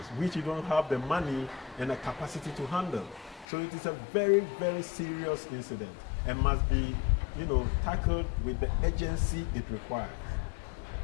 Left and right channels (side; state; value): right; drops out; at 3.5 s